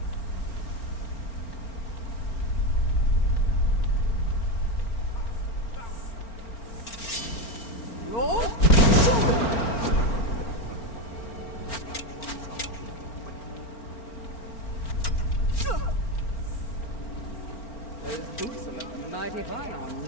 Those boots are looking mighty fine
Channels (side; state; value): right; late; 4.4 ms